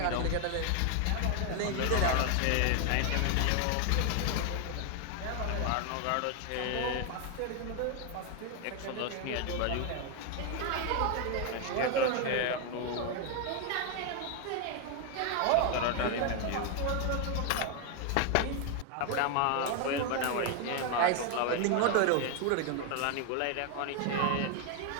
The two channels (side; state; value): both; different; correlation 0.01